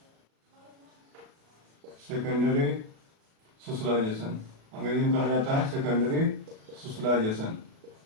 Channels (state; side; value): late; left; 37 ms